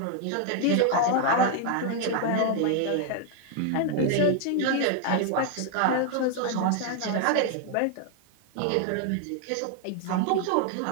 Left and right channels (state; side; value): different; both; correlation 0.00